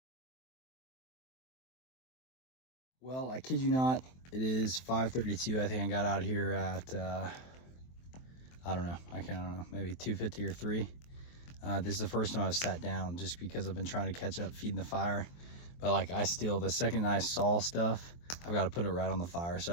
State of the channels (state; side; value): late; right; 23 ms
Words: Well, I kid you not, it is 5:32. I think I got out here at I don't know, maybe 2:50 or 3. This is the first time I've sat down just because I've been trying to catch up feeding the fire. But like the second I saw stuff, I've got to put it right on the fire. So